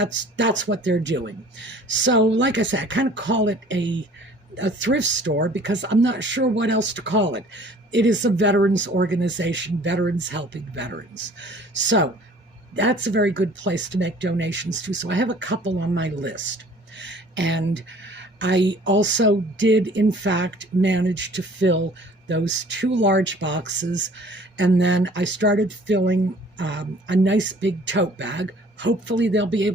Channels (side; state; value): both; normal; correlation 0.51